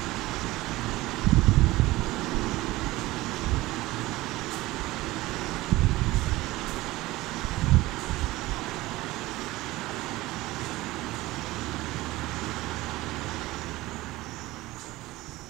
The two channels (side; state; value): left; quieter; 18.7 dB